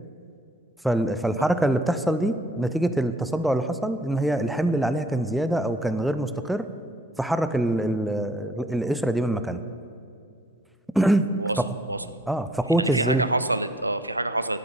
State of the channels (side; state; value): both; normal; correlation 0.59